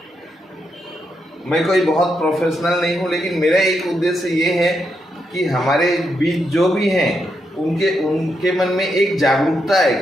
मैं कोई बहुत प्रोफेशनल नहीं हूँ, लेकिन मेरा एक उद्देश्य ये है कि हमारे बीच जो भी हैं उनके मन में एक जागरूकता है,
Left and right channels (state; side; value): normal; both; correlation 0.82